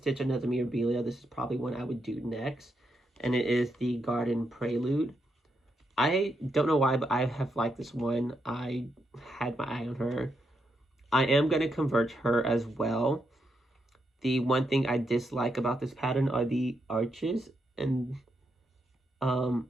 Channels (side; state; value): both; normal; correlation 0.81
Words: another Mirabilia, this is probably one I would do next. And it is the Garden Prelude. I don't know why, but I have liked this one. I had my eye on her. I am going to convert her as well. The one thing I dislike about this pattern are the arches. And